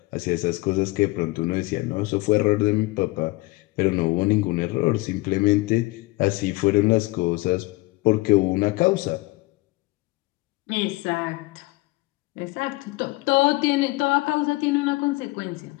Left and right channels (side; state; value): right; quieter; 22.4 dB